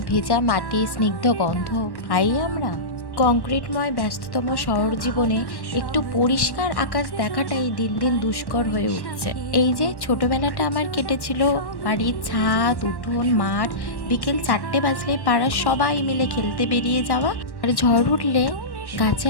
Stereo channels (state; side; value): late; right; 1.1 ms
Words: ভেজা মাটি স্নিগ্ধ গন্ধ পাই আমরা? কংক্রিটময় ব্যস্ততম শহর জীবনে একটু পরিষ্কার আকাশ দেখাটাই দিন দিন দুষ্কর হয়ে উঠছে। এই যে ছোটবেলাটা আমার কেটেছিল বাড়ির ছাদ, উঠোন, মাঠ, বিকেল 4টে বাজলে পাড়ার সবাই মিলে খেলতে বেরিয়ে যাওয়া, আর ঝড় উঠলে